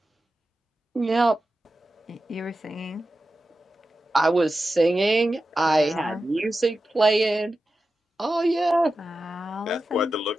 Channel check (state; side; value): normal; both; correlation 0.92